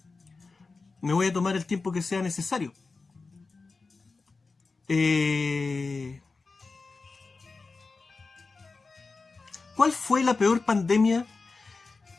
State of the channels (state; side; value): quieter; right; 4.0 dB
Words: Me voy a tomar el tiempo que sea necesario. ¿Cuál fue la peor pandemia